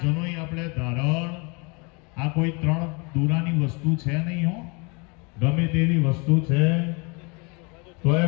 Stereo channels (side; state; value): right; quieter; 30.8 dB